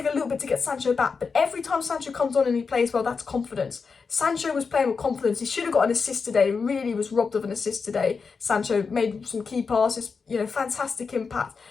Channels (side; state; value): right; quieter; 5.1 dB